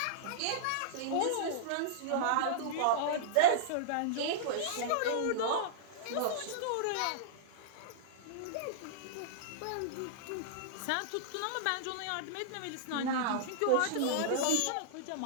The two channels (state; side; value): different; both; correlation -0.02